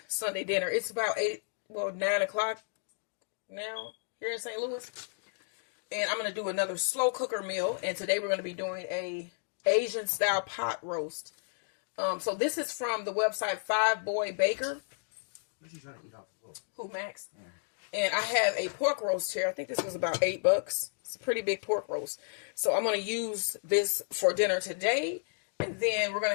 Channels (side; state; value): right; silent; digital silence